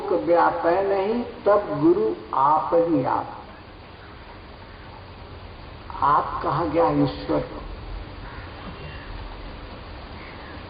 व्यापै नहीं, तब गुरु आप ही आप। आप कहा गया ईश्वर को।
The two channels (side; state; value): both; identical; correlation 1.00